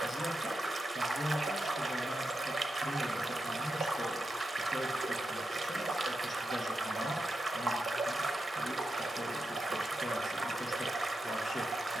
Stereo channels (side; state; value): both; normal; correlation 0.88